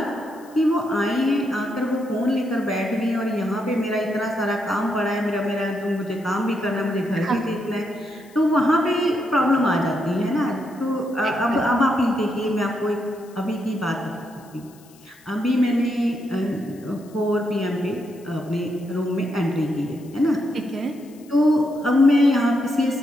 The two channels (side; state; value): left; noise; hiss, 27 dB below the sound